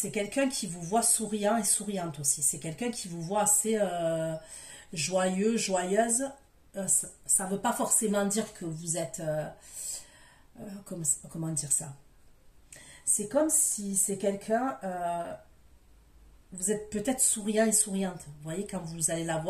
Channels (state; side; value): identical; both; correlation 1.00